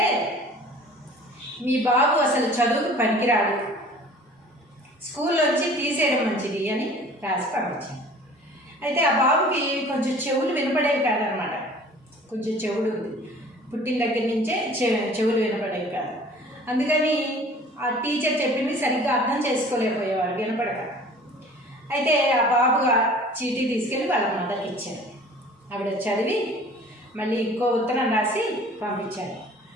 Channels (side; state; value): both; normal; correlation 0.47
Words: మీ బాబు అసలు చదువుకు పనికిరాడు, స్కూల్లోంచి తీసేయడం మంచిది అని రాసి పంపించారు. అయితే ఆ బాబుకి కొంచెం చెవులు వినపడేవి కాదనమాట. కొంచెం చెవుడు ఉంది, పుట్టిన దగ్గర నుంచే చెవులు వినపడేవి కాదు. అందుకని ఆ టీచర్ చెప్పింది సరిగ్గా అర్థం చేసుకోలేకపోయేవాడు వినపడక. అయితే ఆ బాబు చీటీ తీసుకెళ్ళి వాళ్ళ మదర్కి ఇచ్చారు. ఆవిడ చదివి మళ్ళీ ఇంకో ఉత్తరం రాసి పంపించారు.